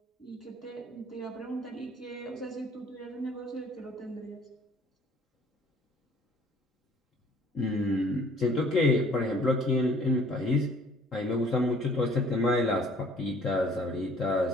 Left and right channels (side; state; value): both; normal; correlation 0.55